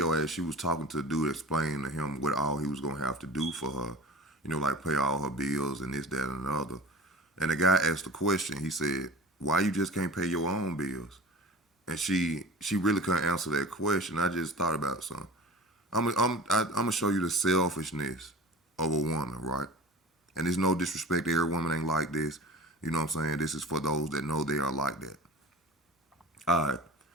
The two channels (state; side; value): normal; both; correlation 0.37